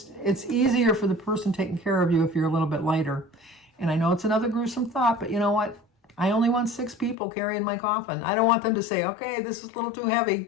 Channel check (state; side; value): drops out; right; at 7.2 s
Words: easier for the person taking care of you if you're a little bit lighter. And I know it's another gruesome thought, but you know what? I only want 6 people carrying my coffin. I don't want them to say, "Okay, this is a little too